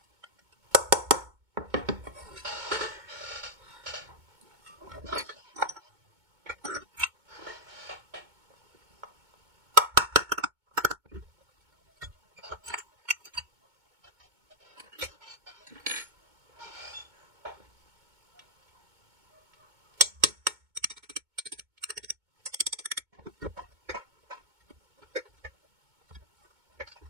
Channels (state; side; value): late; left; 2.2 ms